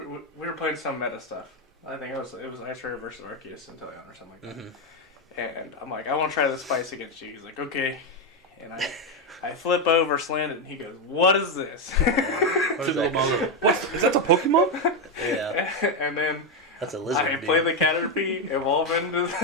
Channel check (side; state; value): both; normal; correlation 0.07